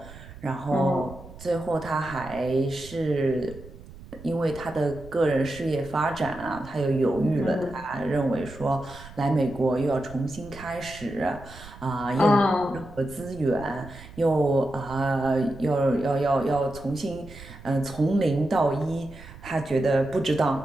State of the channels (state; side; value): noise; right; rumble, 17 dB below the sound